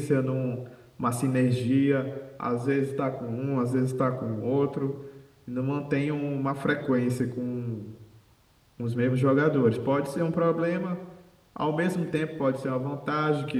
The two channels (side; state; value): both; identical; correlation 1.00